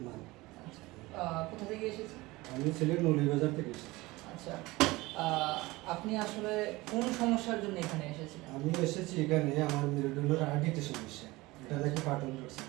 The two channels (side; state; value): left; quieter; 20.9 dB